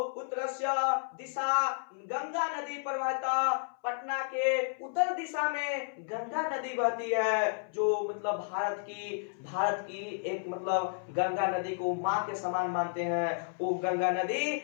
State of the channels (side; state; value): right; silent; 56 dB below the other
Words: उत्तरस्य दिशा गंगा नदी प्रवाहिता, पटना के उत्तर दिशा में गंगा नदी बहती है, जो मतलब भारत की एक मतलब गंगा नदी को माँ के समान मानते हैं। वो गंगा नदी